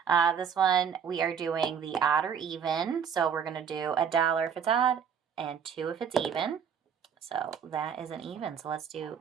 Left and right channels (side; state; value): left; quieter; 7.4 dB